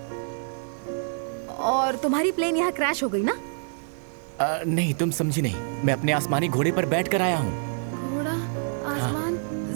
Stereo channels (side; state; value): left; silent; 61 dB below the other